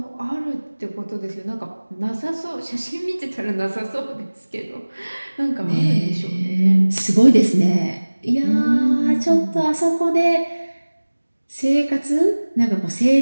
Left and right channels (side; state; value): both; inverted; correlation -1.00